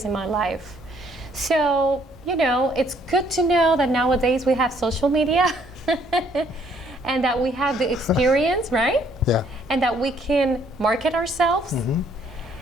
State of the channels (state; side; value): normal; both; correlation 0.65